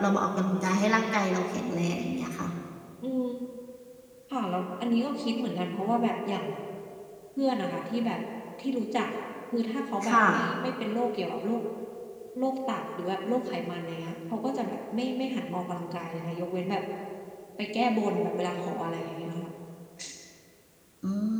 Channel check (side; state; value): both; identical; correlation 1.00